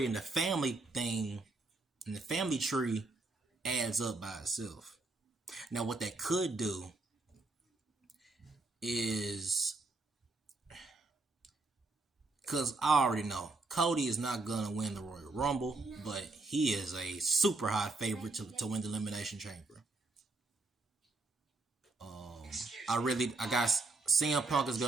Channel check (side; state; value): left; quieter; 3.5 dB